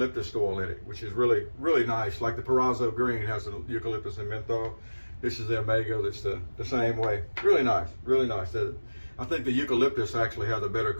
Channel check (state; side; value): inverted; both; correlation -1.00